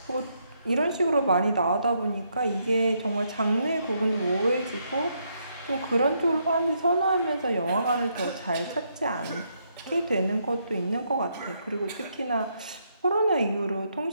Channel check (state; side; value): inverted; both; correlation -0.76